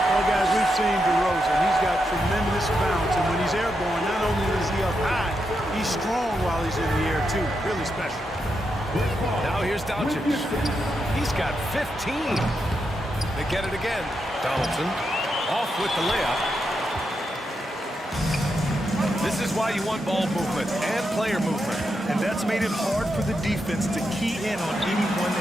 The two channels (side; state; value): both; normal; correlation 0.84